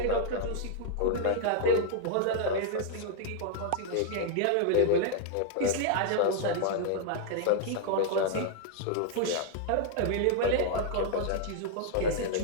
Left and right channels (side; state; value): both; different; correlation 0.00